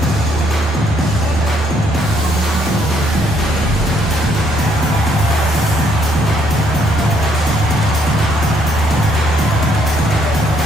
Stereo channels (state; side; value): normal; both; correlation 0.69